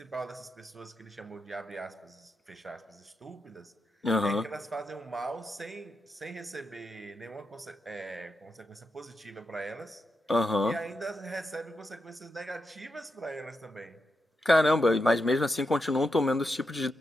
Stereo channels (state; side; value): normal; both; correlation 0.86